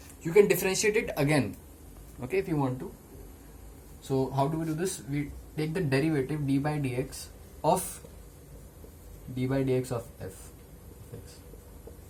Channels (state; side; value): identical; both; correlation 1.00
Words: You can differentiate it again, okay, if you want to. So how do we do this? We take the derivative d by dx of f of x,